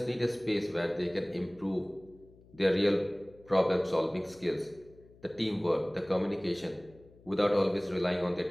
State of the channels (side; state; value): left; noise; hum, 25 dB below the sound